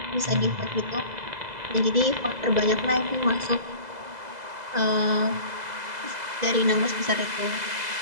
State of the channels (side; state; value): left; late; 2.0 ms